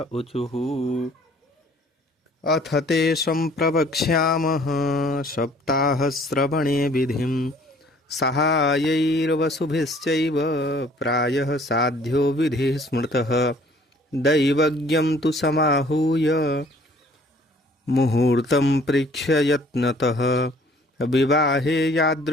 ऊचुः अथ ते सम्प्रवक्ष्यामः सप्ताहश्रवणे विधिं। सहायैर्वसुभिश्चैव प्रायः साध्यो विधिः स्मृतः। दैवज्ञं तु समाहूय मुहूर्तं प्रेक्ष्य यत्नतः। विवाहे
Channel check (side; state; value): both; normal; correlation 0.56